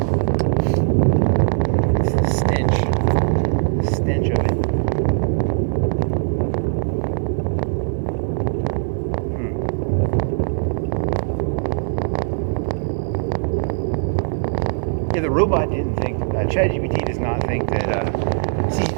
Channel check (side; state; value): left; silent; 65 dB below the other